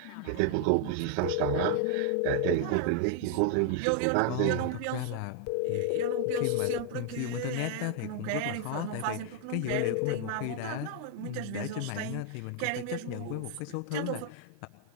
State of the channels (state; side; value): different; both; correlation 0.00